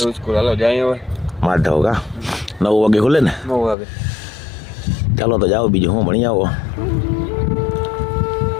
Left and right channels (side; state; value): right; drops out; at 3.8 s